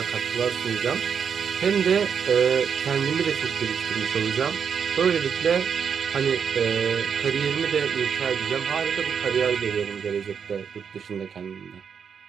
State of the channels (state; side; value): quieter; left; 7.0 dB